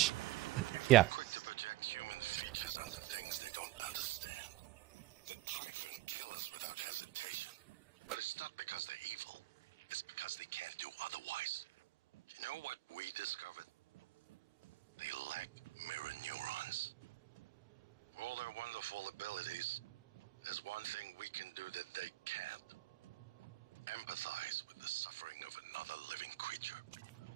Yeah. Quick to project human features onto things they don't understand. The Typhon kill us without hesitation. But it's not because they're evil. It's because they can't do otherwise. You know what we discovered? They lack mirror neurons. For all their wonderful abilities, there's one thing we can do that they can't. Empathize with the suffering of another living creature.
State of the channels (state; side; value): quieter; left; 17.5 dB